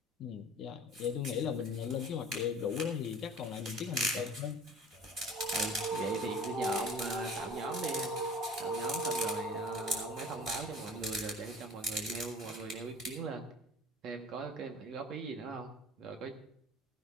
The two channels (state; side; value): normal; both; correlation 0.43